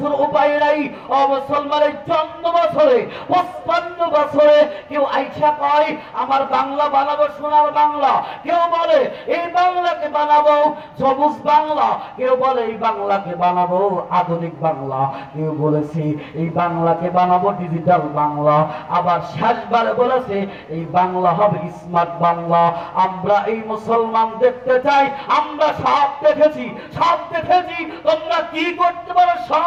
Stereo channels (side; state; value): both; identical; correlation 1.00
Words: উপায় নাই। ও মুসলমানের জন্ম বছরে 55 বছরে কেউ আইসা কয় আমার বাংলা বানাবো সোনার বাংলা, কেউ বলে এই বাংলাকে বানাবো সবুজ বাংলা, কেউ বলে এই বাংলাকে বানাবো আধুনিক বাংলা, কেউ বলেছে এই বাংলাকে বানাবো ডিজিটাল বাংলা, আবার শেষবারে বলেছে এই বাংলা হবে স্মার্ট বাংলা। আমরা এই মুসলমান দেখতে চাই, আমরা সব দেখেছি, সব দেখেছি, তোমরা কি করতে পারো